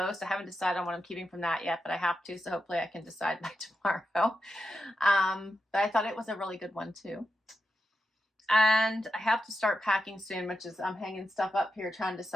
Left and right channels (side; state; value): both; normal; correlation 0.88